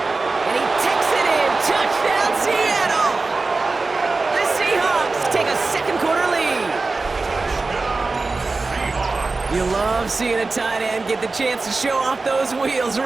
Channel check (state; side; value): quieter; left; 3.7 dB